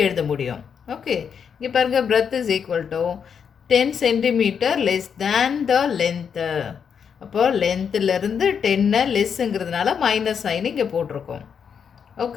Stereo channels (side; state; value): right; quieter; 7.1 dB